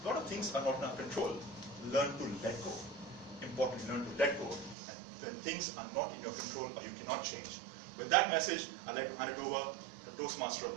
A lot of things are not in our control. Learn to let go. Importantly, learn to let go. And when things are not in your control or you cannot change. With that message, I'd like to hand it over to the Toastmaster of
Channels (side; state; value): left; drops out; at 4.8 s